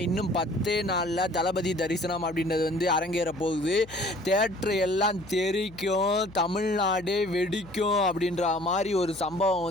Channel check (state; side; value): noise; left; hum, 20 dB below the sound